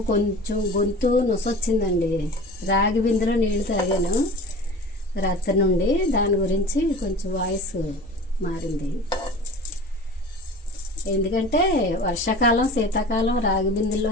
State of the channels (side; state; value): both; normal; correlation 0.38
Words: కొంచెం గొంతు నొసొచ్చిందండి, రాగి బిందెలో నీళ్ళు తాగాను రాత్రి నుండి, దాని గురించి కొంచెం వాయిస్ మారింది. ఎందుకంటే వర్షాకాలం, శీతాకాలం రాగి బిందెల్లో